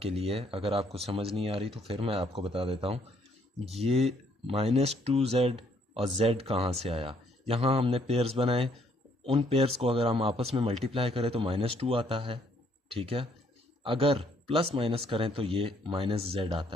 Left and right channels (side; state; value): both; normal; correlation 0.66